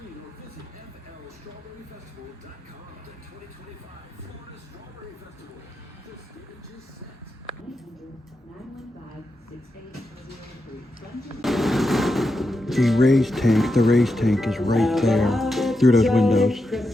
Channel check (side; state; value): both; normal; correlation 0.87